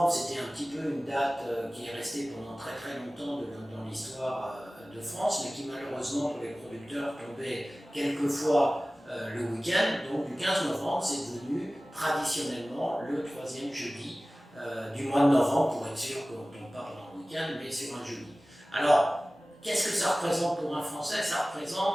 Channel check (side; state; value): both; normal; correlation 0.97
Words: c'était un petit peu une date qui est restée pendant très très longtemps dans l'histoire de France, mais qui malheureusement pour les producteurs tombait quelquefois le week-end. Donc du 15 novembre, c'est devenu traditionnellement le troisième jeudi du mois de novembre, pour être sûr qu'on ne tombe pas pendant le week-end, mais sur un jeudi. Alors, qu'est-ce que ça représente pour un Français? Ça